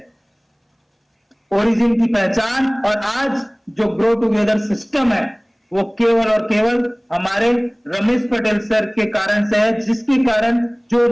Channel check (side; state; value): both; identical; correlation 1.00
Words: ओरिजिन की पहचान और आज जो ग्रो टुगेदर सिस्टम है वो केवल और केवल हमारे रमेश पटेल सर के कारण से है, जिसके कारण जो